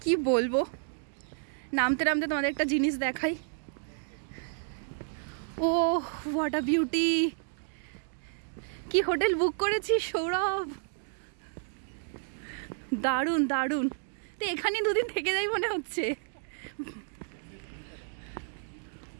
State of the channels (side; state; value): left; silent; digital silence